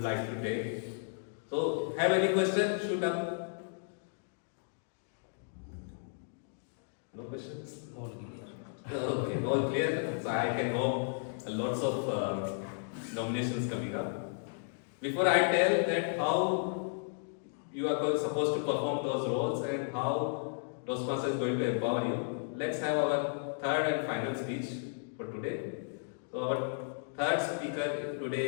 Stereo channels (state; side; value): silent; right; digital silence